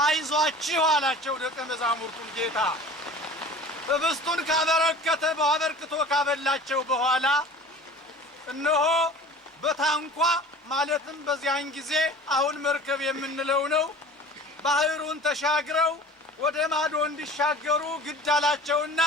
አይዟችሁ አላቸው ደቀ መዛሙርቱን ጌታ። ህብስቱን ካበረከተ አበርክቶ ካበላቸው በኋላ እነሆ በታንኳ ማለትም በዚያን ጊዜ አሁን መርከብ የምንለው ነው ባህሩን ተሻግረው ወደ ማዶ እንዲሻገሩ ግድ አላቸውና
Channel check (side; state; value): both; normal; correlation 0.42